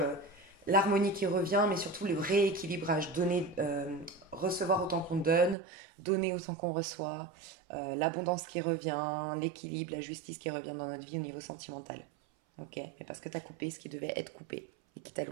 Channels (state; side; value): drops out; left; at 5.6 s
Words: l'harmonie qui revient, mais surtout le rééquilibrage. Donner, recevoir autant qu'on donner autant qu'on reçoit, l'abondance qui revient, l'équilibre, la justice qui revient dans notre vie au niveau sentimental. Ok, mais parce que tu as coupé ce qui devait être coupé et qui